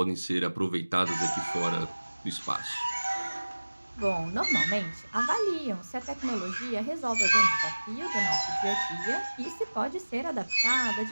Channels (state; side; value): inverted; both; correlation -1.00